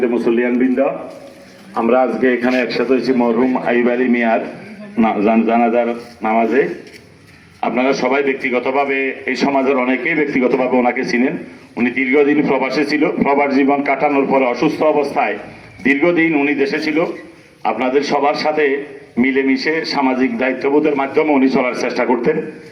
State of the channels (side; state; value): both; identical; correlation 1.00